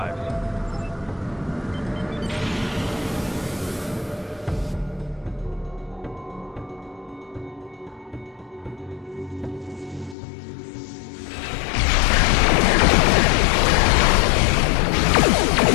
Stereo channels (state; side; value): drops out; right; at 10.2 s